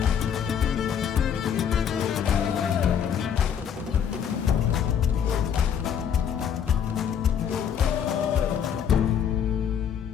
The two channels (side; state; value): right; quieter; 8.2 dB